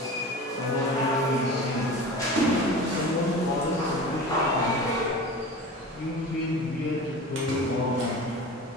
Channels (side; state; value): both; normal; correlation 0.34